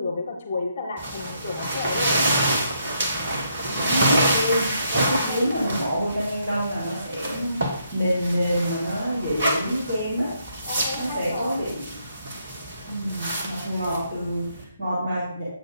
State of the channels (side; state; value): both; inverted; correlation -0.75